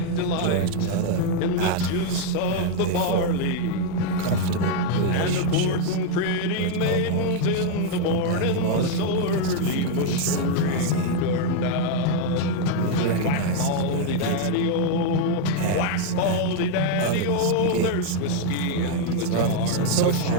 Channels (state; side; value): different; both; correlation 0.00